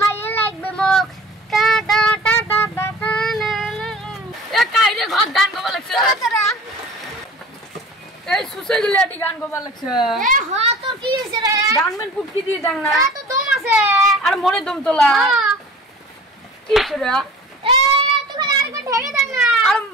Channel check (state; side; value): normal; both; correlation 0.43